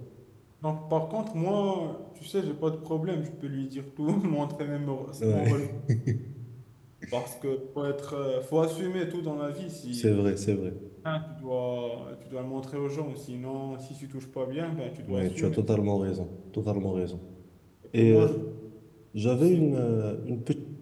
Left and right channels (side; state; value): both; identical; correlation 1.00